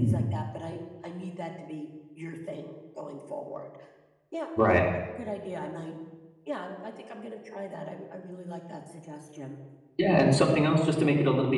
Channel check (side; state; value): both; identical; correlation 1.00